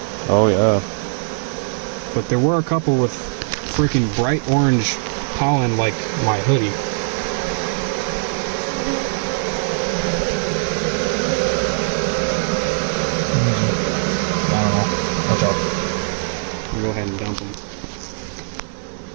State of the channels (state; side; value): silent; left; digital silence